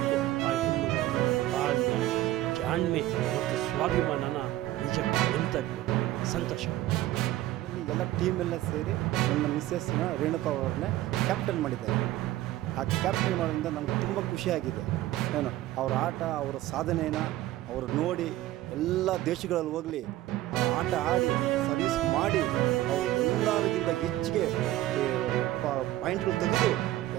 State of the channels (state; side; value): quieter; left; 15.4 dB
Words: ಆ ಹೆಣ್ಣುಗಳ ತಾಳ್ಮೆ, ಜಾಣ್ಮೆ ಮತ್ತು ಸ್ವಾಭಿಮಾನನ ನಿಜಕ್ಕೂ ನೆನಪಬೇಕು. ಸಂತೋಷ. ಎಲ್ಲ ಟೀಮೆಲ್ಲ ಸೇರಿ ನನ್ನ ಮಿಸ್ಸಸ್ನ ರೇಣುಕಾ ಅವ್ರನ್ನೇ ಕ್ಯಾಪ್ಟನ್ ಮಾಡಿದ್ದಾರೆ. ಆ ಕ್ಯಾಪ್ಟನ್ ಮಾಡೋದ್ರಿಂದ ನನಗೆ ತುಂಬ ಖುಷಿಯಾಗಿದೆ. ಏನು ಅವ್ರ ಆಟ, ಅವರ ಸಾಧನೆಯನ್ನು ಅವರು ನೋಡಿ ಎಲ್ಲ ದೇಶಗಳಲ್ಲಿ ಹೋಗಲಿ ಆ ಆಟ ಆಡಿ ಸರ್ವಿಸ್ ಮಾಡಿ ಅವರು ಎಲ್ಲರಿಗಿಂತ ಹೆಚ್ಚಿಗೆ ಪಾಯಿಂಟ್ಗಳು ತೆಗೆದು